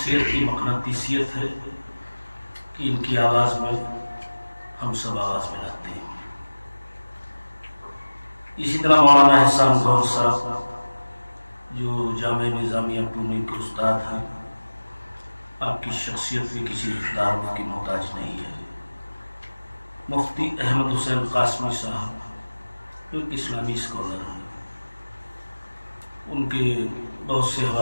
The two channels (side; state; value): both; inverted; correlation -1.00